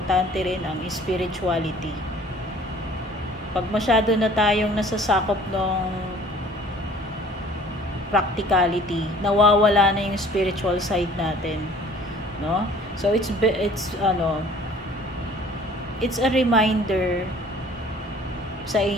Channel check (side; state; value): both; normal; correlation 0.51